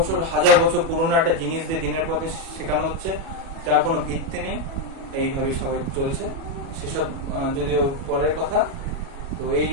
1000 বছর পুরনো একটা জিনিস দিয়ে দিনের পর দিন শেখানো হচ্ছে, যার কোনো ভিত্তি নেই, এইভাবেই সবাই চলছে। সেসব যদিও পরের কথা। তো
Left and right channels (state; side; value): late; left; 37 ms